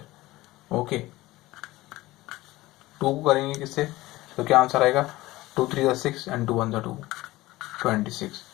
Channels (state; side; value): quieter; right; 18.4 dB